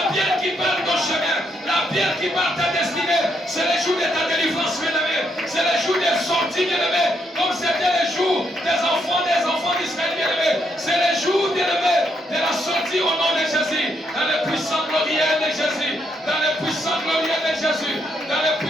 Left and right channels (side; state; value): both; normal; correlation 0.76